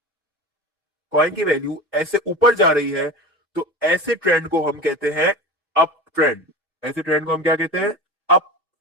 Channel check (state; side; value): normal; both; correlation 0.30